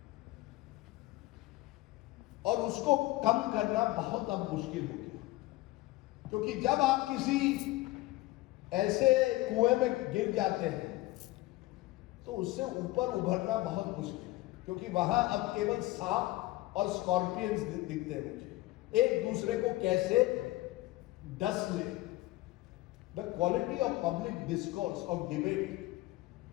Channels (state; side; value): quieter; right; 18.9 dB